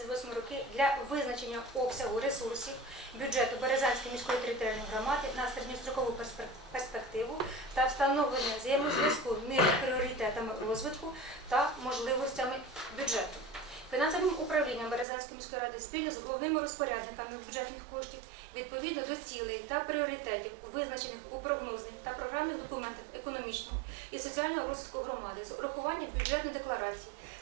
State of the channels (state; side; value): drops out; left; at 15.1 s